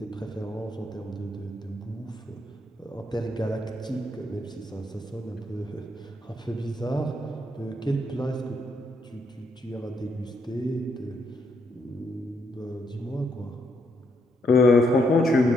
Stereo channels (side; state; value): both; normal; correlation 0.76